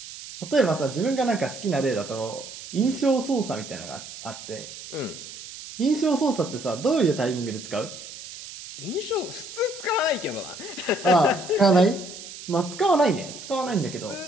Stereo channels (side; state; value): right; noise; hiss, 13 dB below the sound